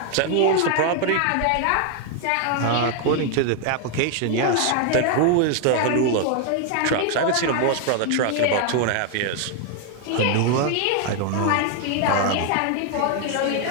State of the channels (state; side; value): different; both; correlation 0.00